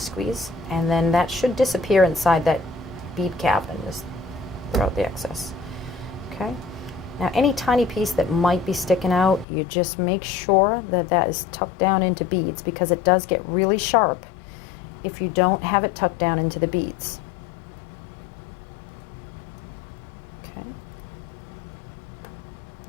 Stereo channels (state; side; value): drops out; right; at 9.5 s